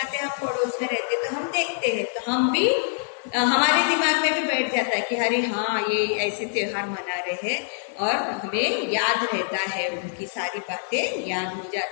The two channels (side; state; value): right; silent; digital silence